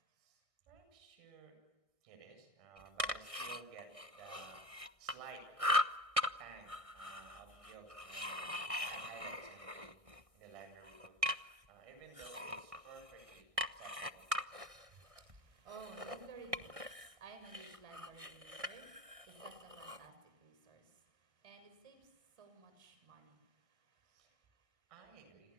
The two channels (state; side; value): late; left; 1.6 ms